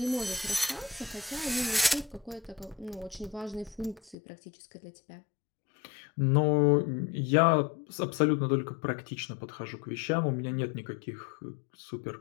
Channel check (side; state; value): right; drops out; at 4.2 s